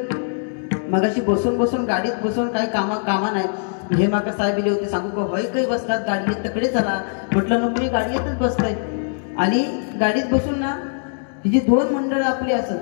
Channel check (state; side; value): silent; right; digital silence